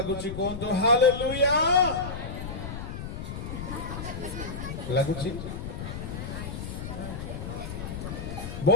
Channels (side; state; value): left; noise; rumble, 7 dB below the sound